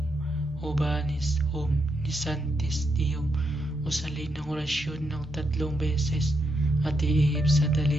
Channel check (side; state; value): both; normal; correlation 0.81